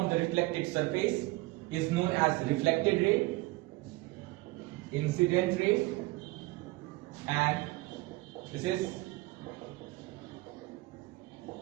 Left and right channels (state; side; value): quieter; left; 21.4 dB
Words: the reflected surface is known as reflected ray, incident ray, and this is